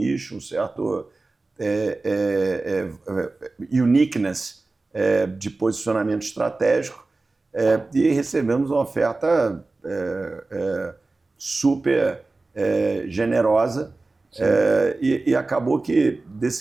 um certo uniqueness de posicionamento estratégico, e recebemos uma oferta super generosa, e acabou que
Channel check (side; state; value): left; quieter; 3.4 dB